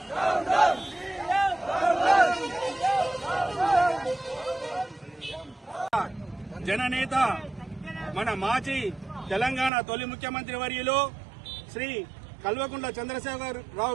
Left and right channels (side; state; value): left; drops out; at 9.7 s